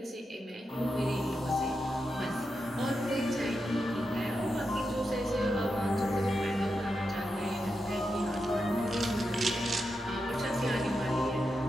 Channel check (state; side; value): normal; both; correlation 0.87